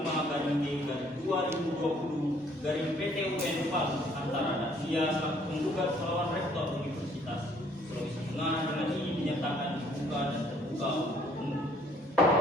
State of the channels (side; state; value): both; normal; correlation 0.62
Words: Palu antara Dasia selaku penggugat melawan Rektor Universitas Sulawesi Tengah dengan ini dinyatakan dibuka dan terbuka untuk umum.